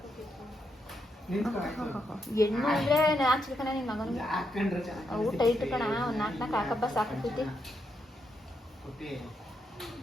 ಹೆಣ್ಣು ಅಂದ್ರೆ ಹಾಕ್ಸ್ಬೇಕಣ್ಣ ನಿನ್ನ ಮಗನಿಗೆ. ಊಟ ಇಟ್ಟು ಕಣ ಒಂದು 4 ಹಾಕಬ್ಬ ಸಾಕೈತಿ.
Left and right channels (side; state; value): both; normal; correlation 0.81